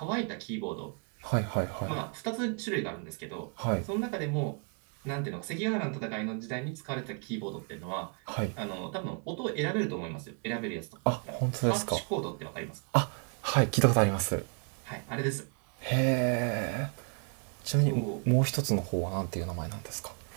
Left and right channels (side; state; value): left; quieter; 39.3 dB